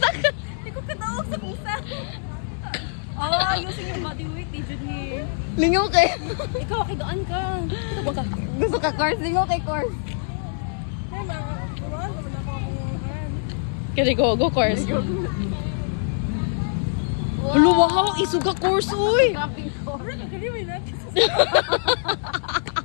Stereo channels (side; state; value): right; silent; digital silence